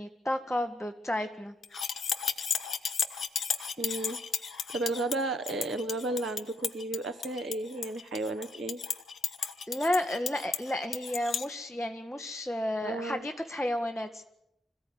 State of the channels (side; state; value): both; normal; correlation 0.76